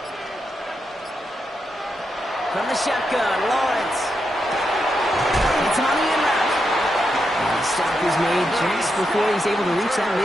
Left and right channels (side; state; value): both; normal; correlation 0.84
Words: From the shotgun, Lawrence. It's on the in route. And the stop is made just before he's able to reach that